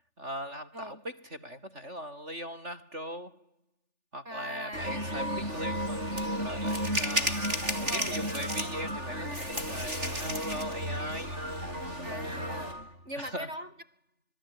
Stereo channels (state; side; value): late; left; 3.4 ms